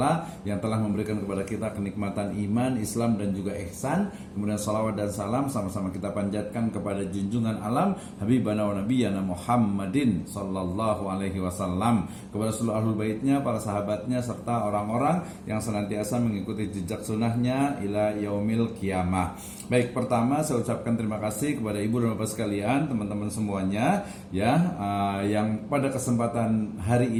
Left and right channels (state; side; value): identical; both; correlation 1.00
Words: yang telah memberikan kepada kita kenikmatan iman, Islam dan juga ihsan. Kemudian salawat dan salam sama-sama kita panjatkan kepada junjungan alam habibana wa nabiyyana Muhammadin sallallahu alaihi wasallam, kepada seluruh ahlul baitnya, para sahabatnya serta orang-orang yang senantiasa mengikuti jejak sunnahnya ila yaumil qiyamah. Baik, pertama saya ucapkan terima kasih kepada ibu dan bapak sekalian, teman-teman semuanya ya, yang pada kesempatan hari